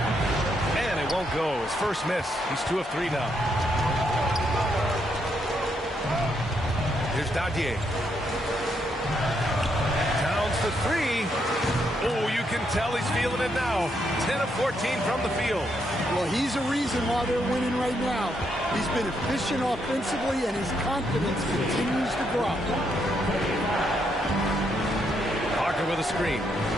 And it won't go. His first miss. He's 2 of 3 now. Here's Dadier. Towns to 3. Oh, you can tell he's feeling it now. 10 of 14 from the field. Well, he's a reason why they're winning right now. He's been efficient offensively, and his confidence continues to grow. Parker with a screen.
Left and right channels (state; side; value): normal; both; correlation 0.77